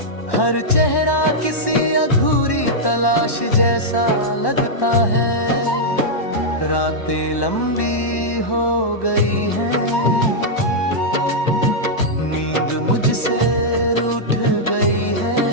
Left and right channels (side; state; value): right; late; 1.1 ms